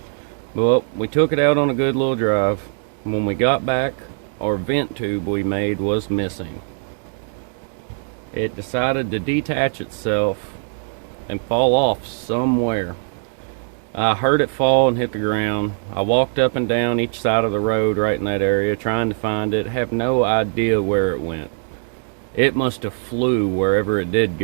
Well, we took it out on a good little drive. When we got back, our vent tube we made was missing. It decided to detach itself and fall off somewhere. I heard it fall and hit the ground. I walked up and down each side of the road right in that area trying to find it. Have no idea where it went. It must have flew wherever it did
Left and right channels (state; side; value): silent; left; digital silence